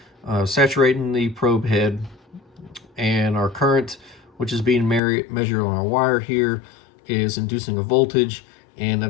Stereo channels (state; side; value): drops out; right; at 5.0 s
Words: saturating the probe head, and our current, which is being measured on our wire here, is inducing a voltage, and